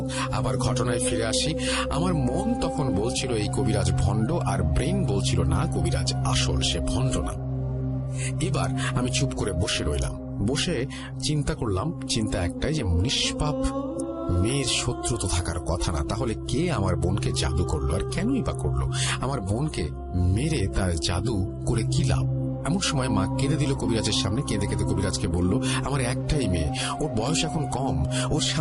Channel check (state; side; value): identical; both; correlation 1.00